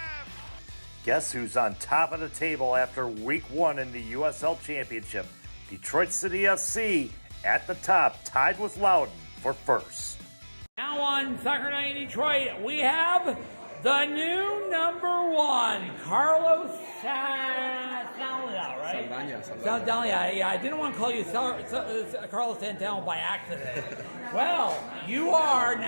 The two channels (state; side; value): inverted; both; correlation -1.00